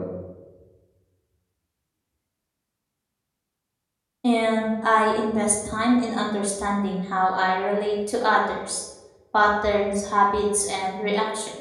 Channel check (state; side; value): identical; both; correlation 1.00